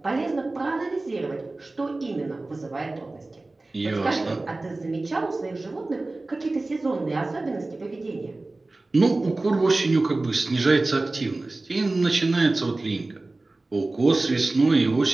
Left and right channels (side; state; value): left; quieter; 3.1 dB